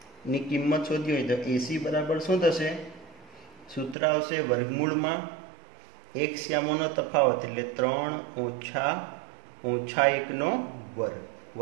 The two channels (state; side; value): drops out; left; at 4.0 s